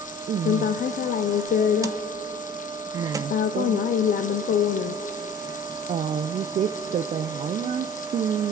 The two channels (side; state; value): both; normal; correlation 0.44